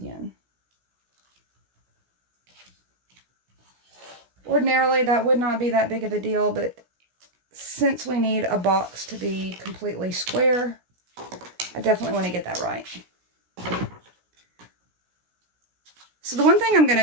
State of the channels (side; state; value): left; late; 16 ms